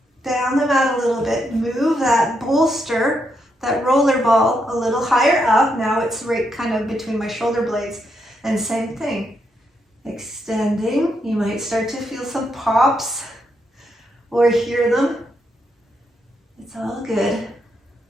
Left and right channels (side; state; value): both; normal; correlation 0.80